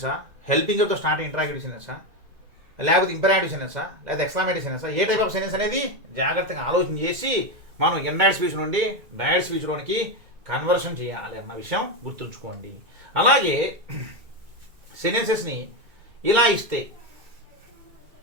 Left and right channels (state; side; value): late; left; 2.2 ms